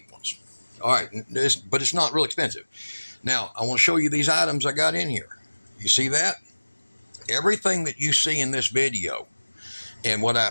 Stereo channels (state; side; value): inverted; both; correlation -1.00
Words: ones. All right, but it's not real expensive. Now, I want to show you these items I got in here. You see that? Everything that you see in this video and what